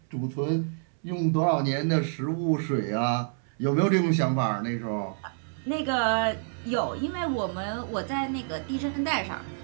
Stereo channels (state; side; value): silent; left; 59 dB below the other